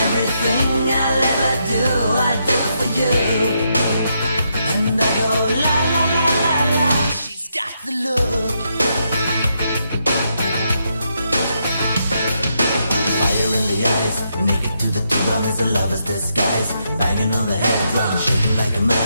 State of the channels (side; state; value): both; inverted; correlation -0.79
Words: I'll ever do, I do for you. And I go la la la la la. She's got the look. Fire in the eyes, naked to the bone as a lover's disguise. Banging on the head drum, shaking like a